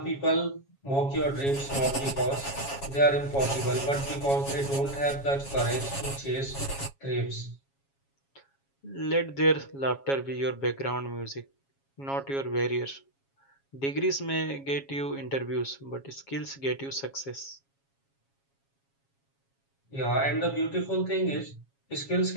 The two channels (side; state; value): right; late; 7.3 ms